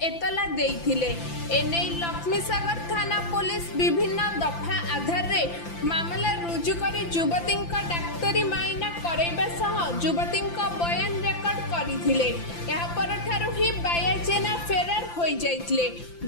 एतला देइथिले। एने लक्ष्मीसागर थाना पुलिस विभिन्न दफा आधार रे मामला रुजु करी युवती डाक्तरी माइना करैबा सह युवती बयान रेकर्ड करथिले। या परठारु ही बाया जेना फेरार होई जाइथिले।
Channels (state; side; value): late; right; 5.9 ms